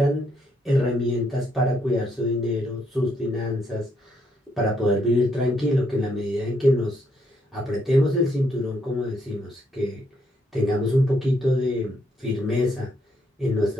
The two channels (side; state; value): both; normal; correlation 0.74